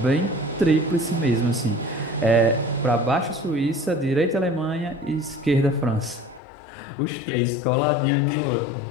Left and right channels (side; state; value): right; drops out; at 6.4 s